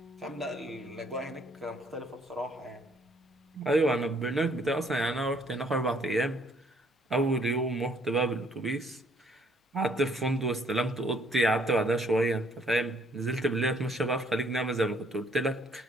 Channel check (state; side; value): normal; both; correlation 0.65